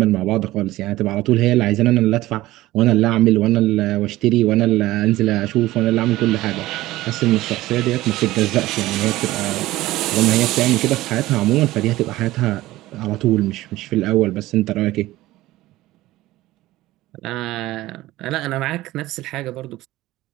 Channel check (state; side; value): quieter; left; 17.1 dB